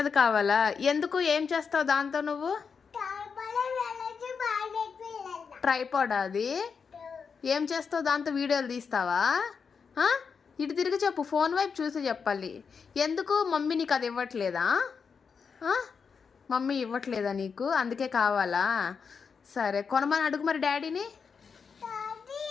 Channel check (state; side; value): quieter; right; 5.9 dB